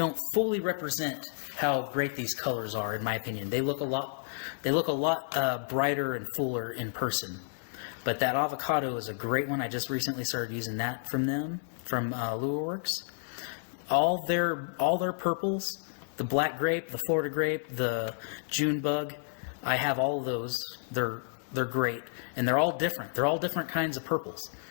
fully represent how great these colors are, in my opinion. They look a lot brighter and fuller in person. But that avocado is a great one. I just recently started using that from LureWorks. All their purples, the black grape, the Florida grape, the June bug, I have all of those. They're great, and they're all different. They're all different kinds of purples.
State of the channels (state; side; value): silent; right; 57 dB below the other